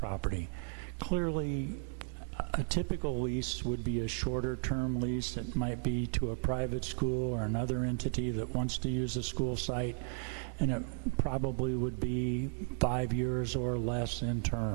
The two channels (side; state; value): left; silent; 55 dB below the other